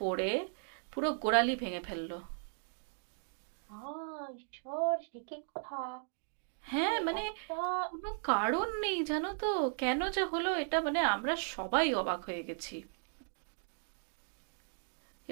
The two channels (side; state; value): left; silent; digital silence